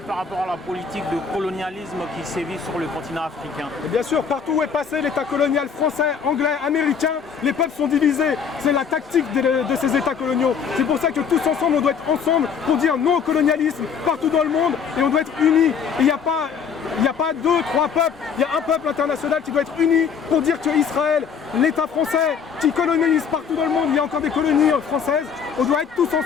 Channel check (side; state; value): right; quieter; 6.7 dB